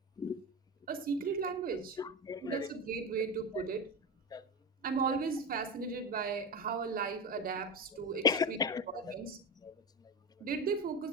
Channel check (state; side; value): normal; both; correlation 0.20